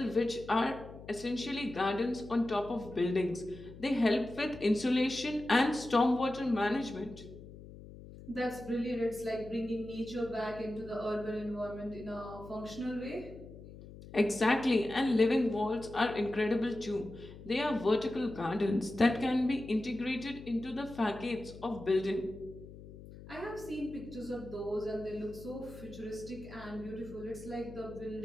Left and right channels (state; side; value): noise; left; hum, 16 dB below the sound